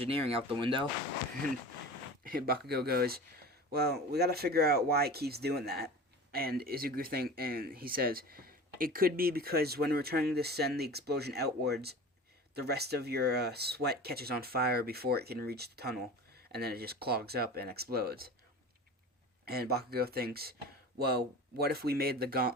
out the window." And Bakugo goes, "Well, we gotta figure out why it keeps doing that." And he says, "It could be because when we're trying to send the explosion outwards, the rest of your sweat catches on fire before it can reach the tunnel, and then it just clogs up and explodes." And Bakugo thinks, "Well, what if we made the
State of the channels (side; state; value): both; normal; correlation 0.35